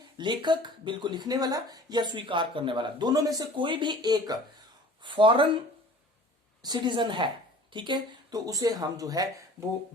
लेखक, बिल को लिखने वाला या स्वीकार करने वाला, दोनों में से कोई भी एक फॉरेन सिटीजन है। ठीक है, तो उसे हम जो है वो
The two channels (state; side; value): normal; both; correlation 0.45